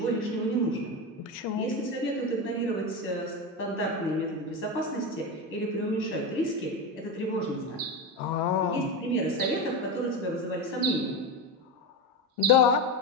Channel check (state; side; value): normal; both; correlation 0.18